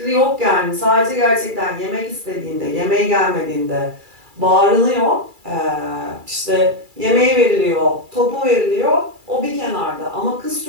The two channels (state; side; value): late; left; 2.3 ms